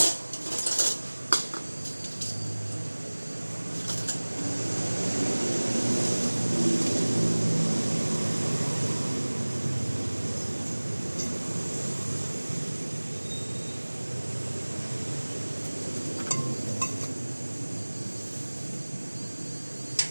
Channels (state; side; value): inverted; both; correlation -1.00